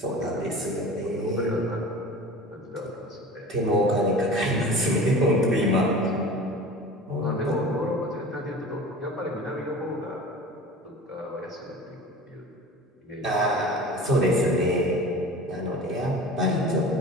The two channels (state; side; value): normal; both; correlation 0.38